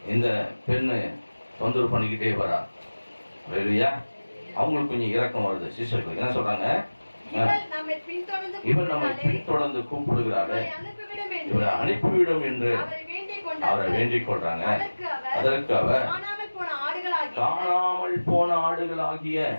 இந்த பெண்ணு தொந்தரவு பண்ணிக்கிட்டே வரா. அவங்களுக்கு கொஞ்சம் இரக்கம் வருது. சீஷர்களுக்கு என்ன சொல்றாங்க? இவர் நம்மை பின்தொடர்ந்து கூப்பிடுகிறாரு, இவரை அனுப்பிவிடும் என்று அவரை வேண்டிக் கொள்றாங்க. அதற்கு அவர் காணாமல் போன ஆடுகளாகிய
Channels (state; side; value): inverted; both; correlation -1.00